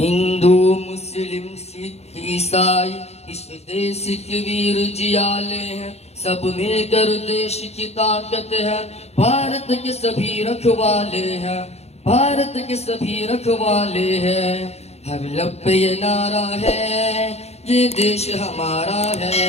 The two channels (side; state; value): right; late; 0.31 ms